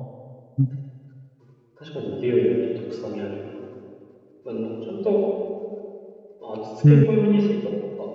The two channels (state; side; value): identical; both; correlation 1.00